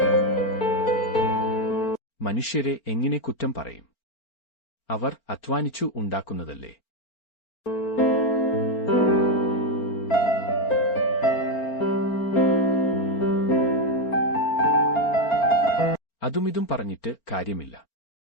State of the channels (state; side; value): late; right; 4.4 ms